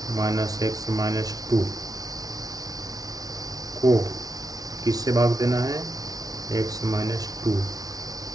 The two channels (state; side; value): late; left; 0.18 ms